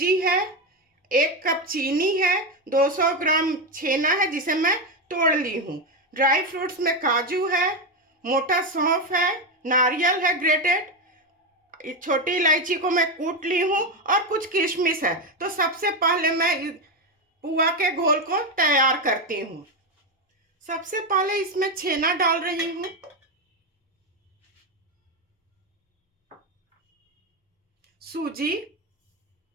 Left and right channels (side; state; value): both; normal; correlation 0.11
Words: है, 1 कप चीनी है, 200 ग्राम छेना है जिसे मैं तोड़ ली हूँ। ड्राई फ्रूट्स में काजू है, मोटा सौंफ है, नारियल है ग्रेटेड, छोटी इलायची को मैं कूट ली हूँ और कुछ किशमिश है। तो सबसे पहले मैं पुआ के घोल को तैयार करती हूँ। सबसे पहले इसमें छेना डाल रही हूँ, सूजी,